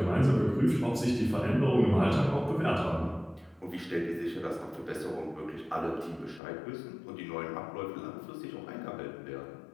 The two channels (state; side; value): drops out; right; at 6.4 s